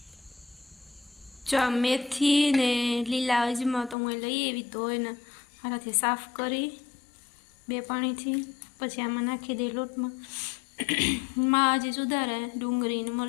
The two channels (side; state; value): right; drops out; at 4.0 s